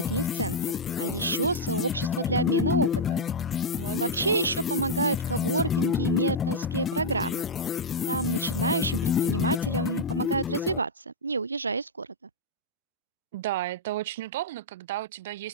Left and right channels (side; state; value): both; normal; correlation -0.06